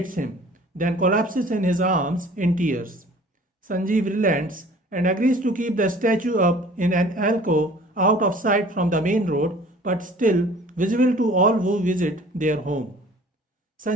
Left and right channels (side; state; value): both; normal; correlation 0.49